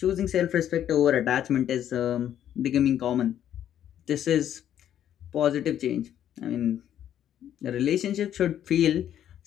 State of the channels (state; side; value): quieter; right; 10.6 dB